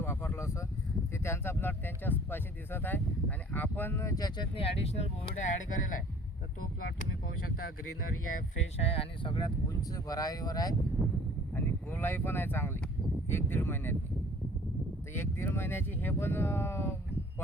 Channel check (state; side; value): normal; both; correlation 0.51